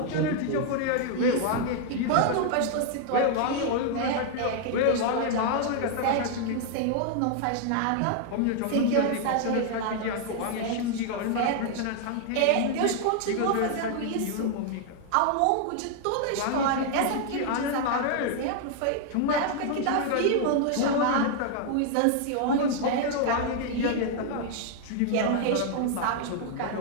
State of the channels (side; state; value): both; different; correlation 0.00